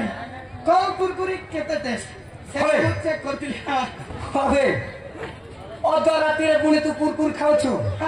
को कुरकुरी केते टेस्ट चेक करतिली हबे अद रात्रि रे पुणी तू कुरकुरी खाउछु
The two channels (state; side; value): identical; both; correlation 1.00